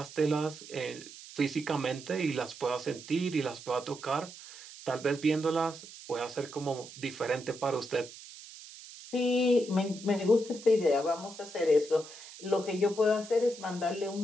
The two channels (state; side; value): noise; right; hiss, 16 dB below the sound